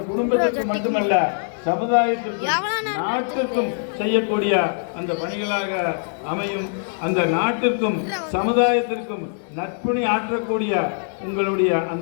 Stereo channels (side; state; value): right; silent; 64 dB below the other